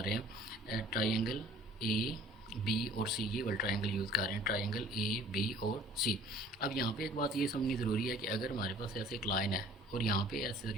हैं ट्राइंगल ए बी और सी, ये वाला ट्रायंगल यूज़ कर रहे हैं, ट्रायंगल ए बी और सी। अब यहाँ पे एक बात ये समझनी ज़रूरी है कि अगर हमारे पास ऐसे एक लाइन है और यहाँ पे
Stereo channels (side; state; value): both; normal; correlation 0.51